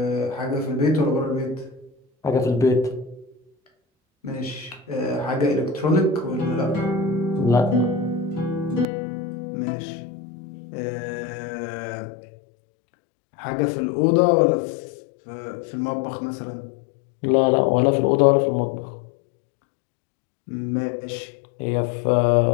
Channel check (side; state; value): right; drops out; at 8.8 s